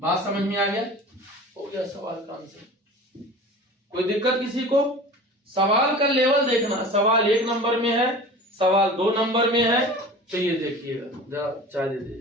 समझ में आ गया, हो गया सवाल का आंसर। कोई दिक्कत किसी को? सवाल का लेवल देखना, सवाल 1 नंबर में है, सवाल 2 नंबर में है, तो ये देखिएगा। जरा चाय दे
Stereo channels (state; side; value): normal; both; correlation 0.38